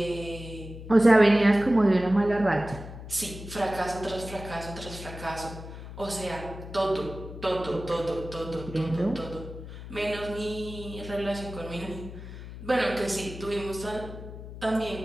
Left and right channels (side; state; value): left; noise; hum, 12 dB below the sound